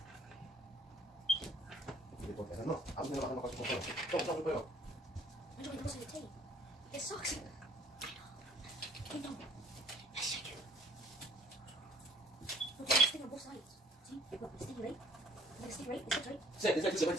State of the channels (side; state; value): both; normal; correlation 0.59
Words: No, aún no bajamos con su juego. Toma, juego. I'm doing most of the tea. It sucks. I know. Yes, I do. Look, there's a sting on both sides. See? Look, it's sting right. It's sting right. It's right. Sì, ti sei